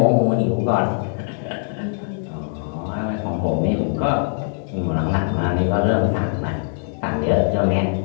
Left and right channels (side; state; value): right; silent; 58 dB below the other